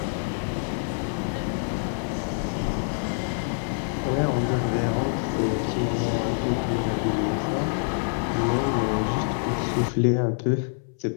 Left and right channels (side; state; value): right; silent; 61 dB below the other